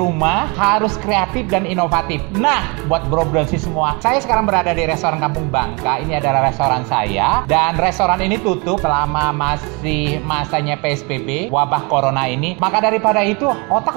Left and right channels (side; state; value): left; quieter; 30.0 dB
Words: harus kreatif dan inovatif. Nah, buat bro dan sis semua, saya sekarang berada di restoran Kampung Bangka. Ini adalah restoran saya, dan restoran ini tutup selama masih masanya PSBB, wabah corona ini. Maka daripada itu, otak